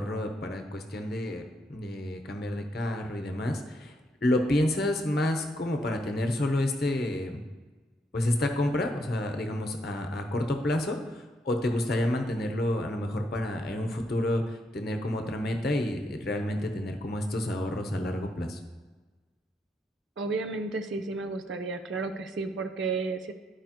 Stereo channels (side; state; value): both; normal; correlation 0.77